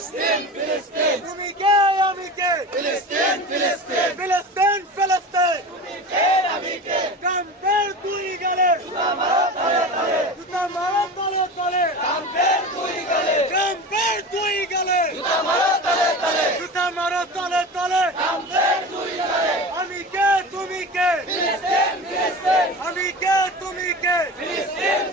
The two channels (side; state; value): both; normal; correlation 0.31